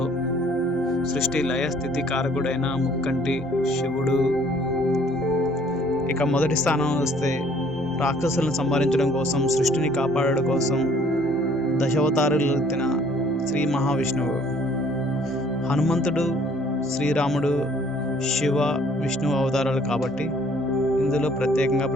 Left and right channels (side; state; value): both; normal; correlation 0.58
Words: సృష్టి లయ స్థితి కారకుడైన ముక్కంటి శివుడు. ఇక మొదటి స్థానం వస్తే రాక్షసులను సంహరించడం కోసం, సృష్టిని కాపాడడం కోసం దశావతారాలు ఎత్తిన శ్రీ మహావిష్ణువు. హనుమంతుడు, శ్రీరాముడు శివ విష్ణు అవతారాలు కాబట్టి ఇందులో ప్రత్యేకంగా